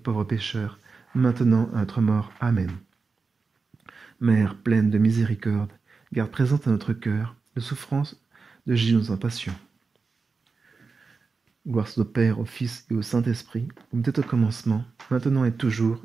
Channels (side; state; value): left; quieter; 4.5 dB